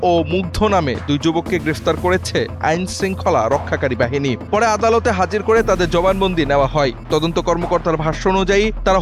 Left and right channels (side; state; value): both; identical; correlation 1.00